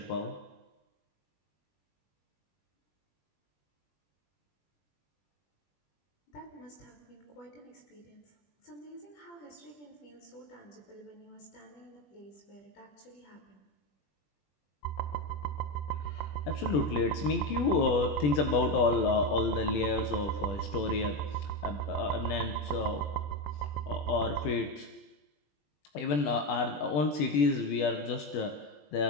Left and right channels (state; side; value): late; right; 20 ms